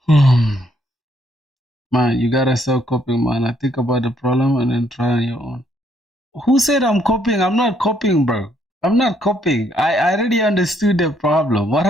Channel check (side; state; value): both; normal; correlation 0.70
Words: man, you gotta stop copying, man. I think about the problem and then try on your own. Who said I'm copying? I'm not copying, bro. I'm not copying. I already understood the problem. What